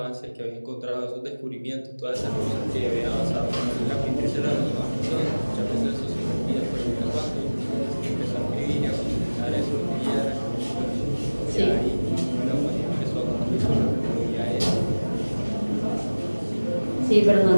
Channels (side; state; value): both; inverted; correlation -1.00